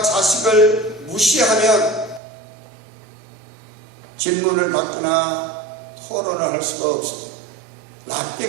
자식을 무시하면 질문을 받거나 토론을 할 수가 없습니다.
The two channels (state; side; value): drops out; left; at 2.2 s